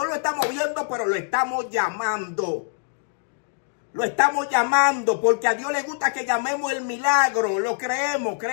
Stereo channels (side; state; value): right; silent; digital silence